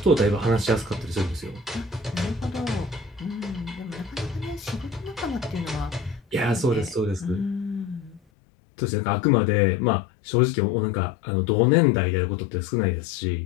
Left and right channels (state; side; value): drops out; right; at 8.2 s